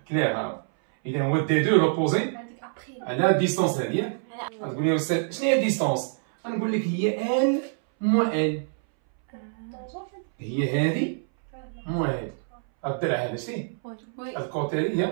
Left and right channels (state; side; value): silent; left; 61 dB below the other